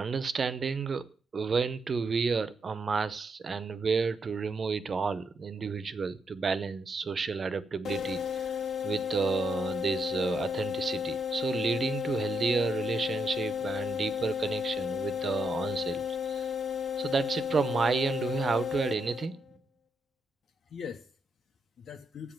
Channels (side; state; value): both; normal; correlation 0.79